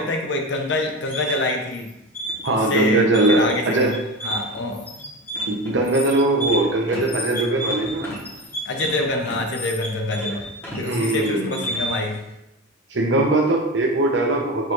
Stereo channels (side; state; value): both; normal; correlation 0.25